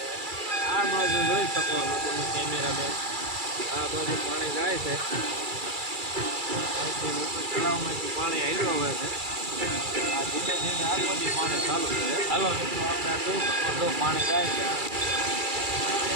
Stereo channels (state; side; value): late; left; 2.3 ms